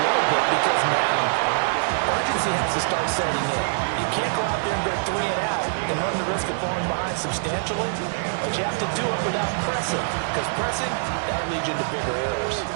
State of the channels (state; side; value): silent; left; digital silence